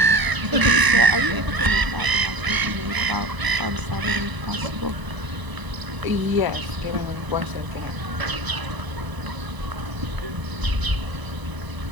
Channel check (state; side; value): late; left; 1.0 ms